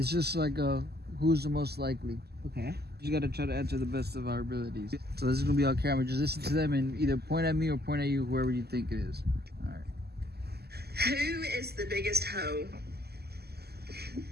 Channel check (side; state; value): left; late; 0.46 ms